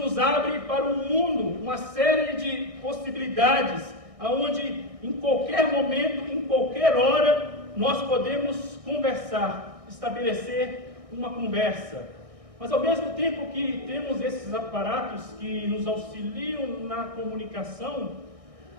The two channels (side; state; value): left; late; 1.6 ms